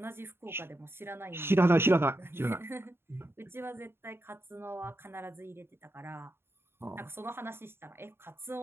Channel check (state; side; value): late; left; 0.11 ms